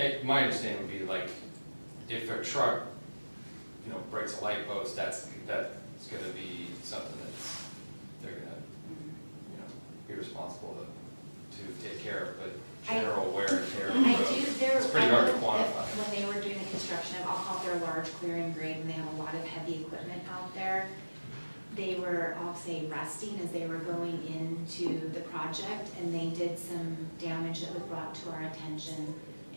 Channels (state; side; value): inverted; both; correlation -1.00